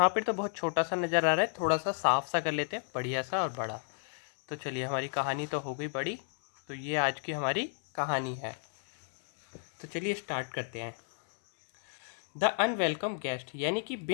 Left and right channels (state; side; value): silent; right; 56 dB below the other